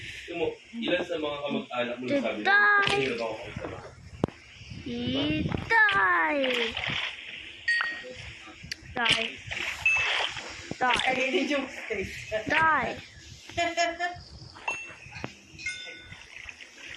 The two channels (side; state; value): both; identical; correlation 1.00